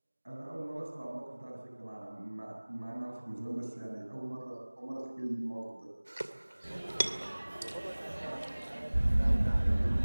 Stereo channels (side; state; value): both; inverted; correlation -1.00